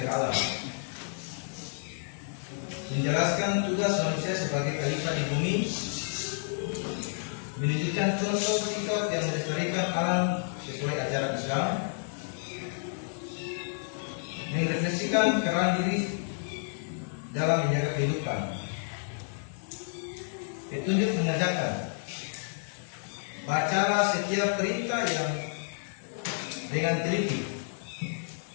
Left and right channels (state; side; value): silent; right; 56 dB below the other